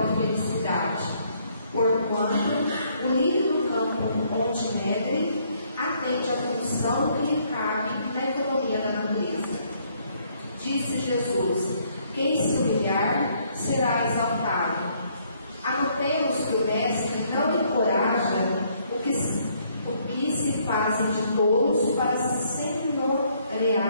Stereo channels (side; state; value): both; inverted; correlation -0.68